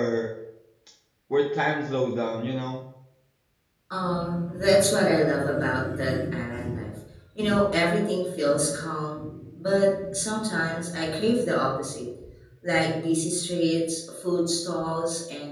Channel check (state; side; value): identical; both; correlation 1.00